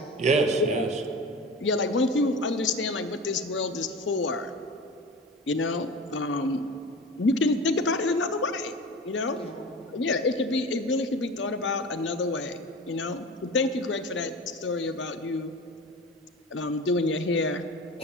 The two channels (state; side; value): normal; both; correlation 0.33